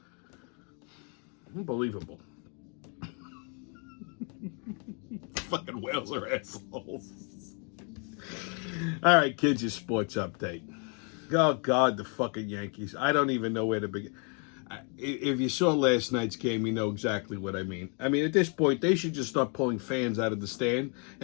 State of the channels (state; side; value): quieter; right; 37.3 dB